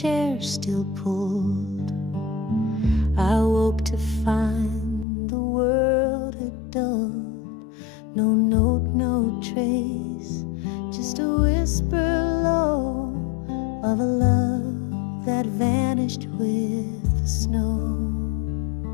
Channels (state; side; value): drops out; right; at 5.1 s